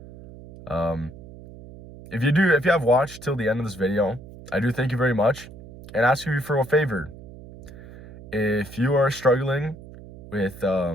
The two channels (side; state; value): right; noise; hum, 17 dB below the sound